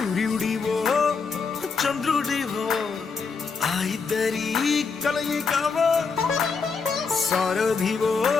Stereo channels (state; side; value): quieter; right; 5.1 dB